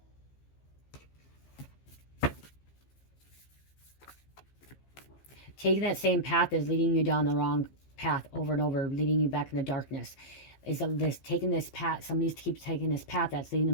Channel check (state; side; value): late; right; 15 ms